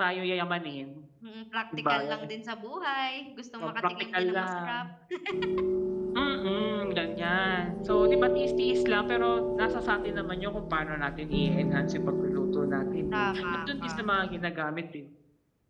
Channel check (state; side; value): identical; both; correlation 1.00